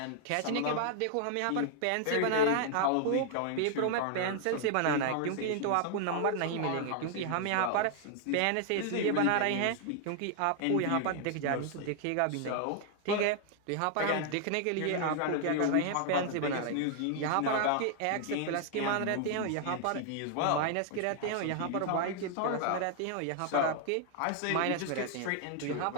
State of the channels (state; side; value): different; both; correlation 0.00